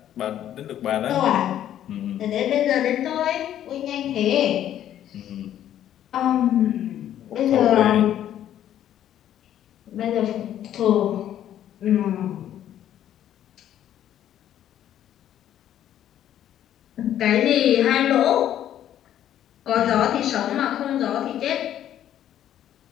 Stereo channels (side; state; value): right; quieter; 11.2 dB